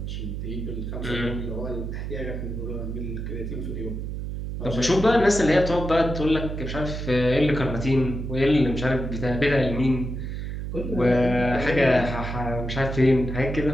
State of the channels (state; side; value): noise; right; hum, 5 dB below the sound